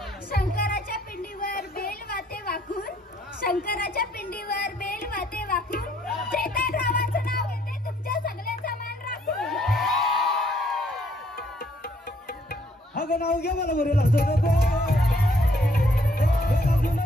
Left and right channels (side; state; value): both; normal; correlation 0.66